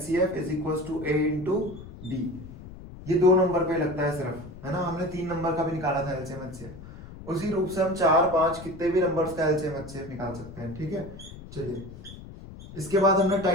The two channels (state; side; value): noise; left; rumble, 15 dB below the sound